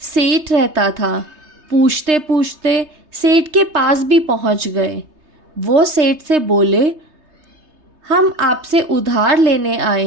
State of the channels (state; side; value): late; left; 3.3 ms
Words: सेठ रहता था। पूछते पूछते सेठ के पास भी पहुंच गए। वो सेठ से बोले, हम आपसे उधार लेने